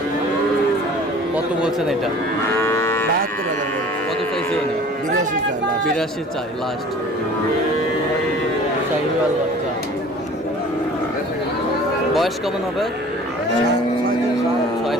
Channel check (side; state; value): both; normal; correlation 0.46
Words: কত বলছেন এটা? 72,000 করে। কত চাইছে উনি? 82 চাই last। 82 চাই লাস্ট। শাহিওয়াল বাচ্চা, বয়স কেমন হবে? 6